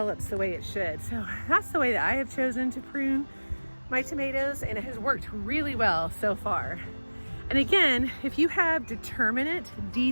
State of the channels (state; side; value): inverted; both; correlation -1.00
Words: the way it should. So that's the way that I have chosen to prune my tomatoes, and it has worked really well so far. And again, if you have determinate